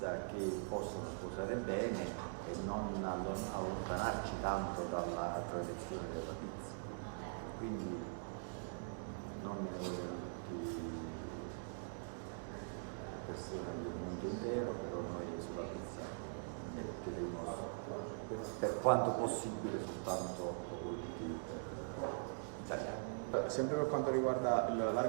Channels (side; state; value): left; silent; digital silence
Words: che possono sposare bene e non allontanarci tanto dalla tradizione della pizza. Quindi non me ne vogliono tutti le persone del mondo intero, però noi sulla pizza metteremo per quanto possibile soltanto prodotti italiani. Sempre per quanto riguarda